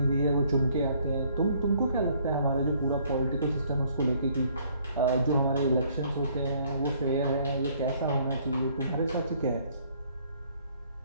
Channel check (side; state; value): both; inverted; correlation -0.63